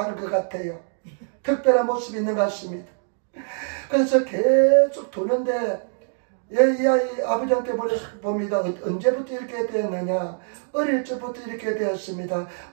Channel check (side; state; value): left; silent; digital silence